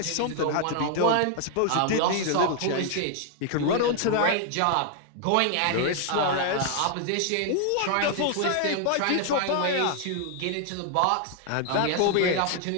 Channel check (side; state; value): both; different; correlation 0.00